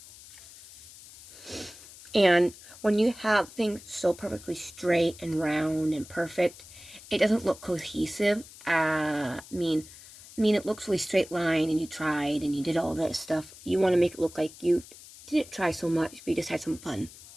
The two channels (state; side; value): noise; left; hiss, 19 dB below the sound